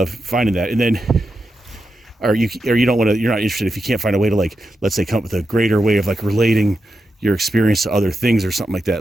finding that, and then. Or you don't want to, you're not interested if you can't find a way to, like, let's say, come up with a greater way of like relating your experience to other things or something like that.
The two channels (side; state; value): both; normal; correlation 0.88